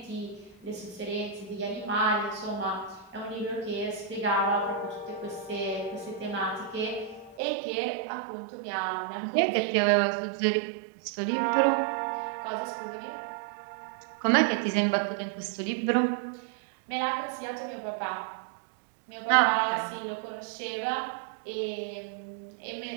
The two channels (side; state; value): left; drops out; at 7.4 s